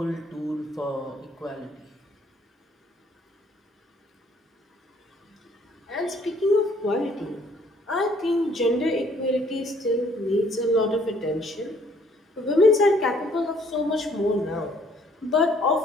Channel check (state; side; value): normal; both; correlation 0.62